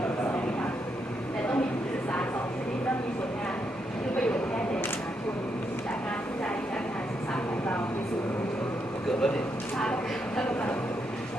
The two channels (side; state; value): both; normal; correlation 0.80